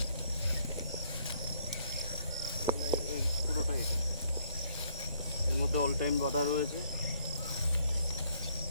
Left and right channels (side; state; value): both; inverted; correlation -0.68